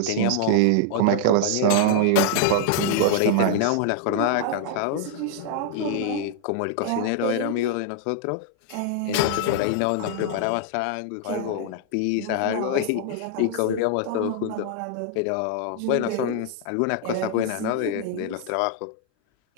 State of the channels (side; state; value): both; different; correlation -0.01